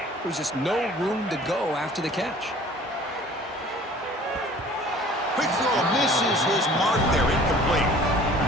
There's just no room to go after the catch. Quick throw misses his mark there, incomplete.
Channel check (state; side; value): normal; both; correlation 0.49